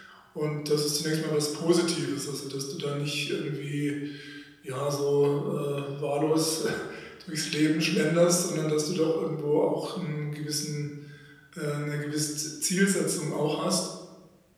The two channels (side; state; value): both; identical; correlation 1.00